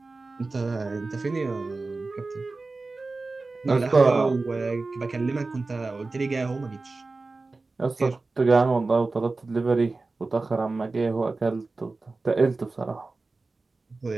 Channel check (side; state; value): left; quieter; 3.6 dB